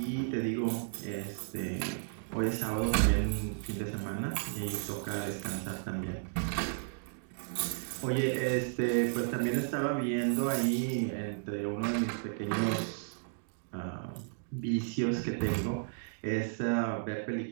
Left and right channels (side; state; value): left; silent; digital silence